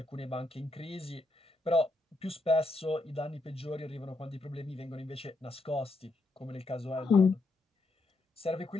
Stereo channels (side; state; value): right; quieter; 3.0 dB